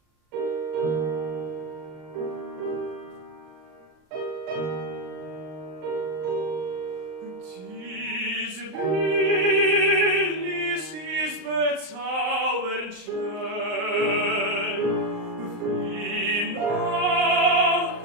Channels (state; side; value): late; left; 39 ms